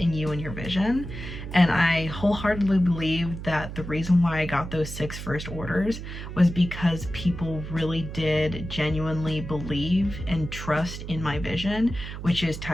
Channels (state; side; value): noise; right; hum, 9 dB below the sound